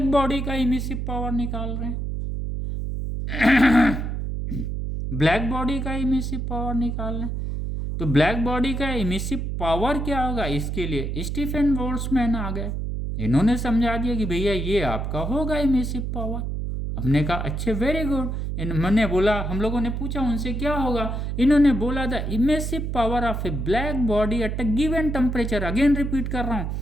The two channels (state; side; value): noise; right; hum, 3 dB below the sound